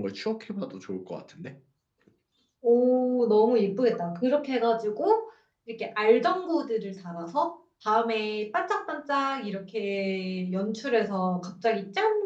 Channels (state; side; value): identical; both; correlation 1.00